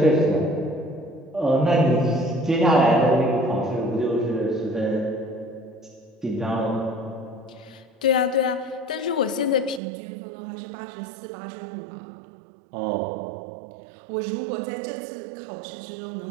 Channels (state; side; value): drops out; left; at 9.8 s